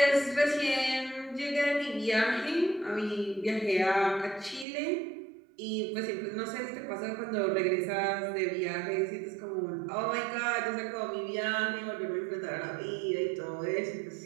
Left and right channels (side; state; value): left; drops out; at 4.7 s